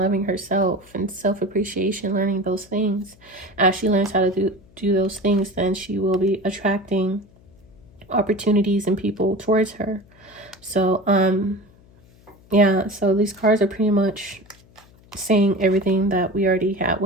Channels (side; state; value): left; noise; hum, 27 dB below the sound